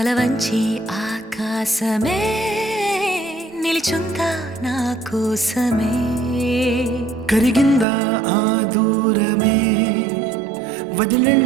వంచి ఆకాశమే నిలిచుందా నా కోసమే. కరిగిందా ఆ దూరమే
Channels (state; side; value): drops out; left; at 7.9 s